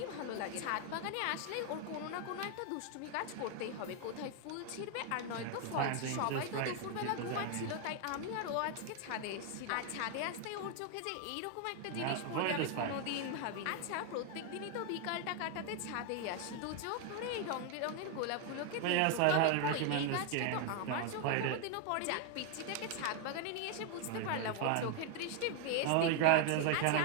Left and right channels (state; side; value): different; both; correlation 0.00